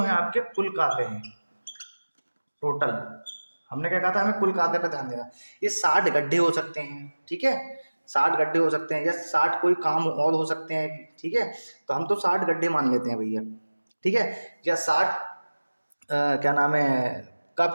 आपके कुल कार्य हैं टोटल। हमने क्या कहा था, हमें कुल कार्य पे ध्यान देना। ये 60 गड्ढे हो सकते हैं। ठीक है, 60 गड्ढे हो सकते हैं या 60 कोई काम और हो सकते हैं। ठीक है, तो हम तो 60 गड्ढे मान लेते हैं भैया। ठीक है, या 60 क्या नाम है कप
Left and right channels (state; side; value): inverted; both; correlation -1.00